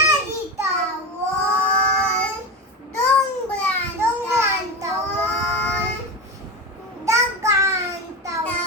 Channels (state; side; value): normal; both; correlation 0.21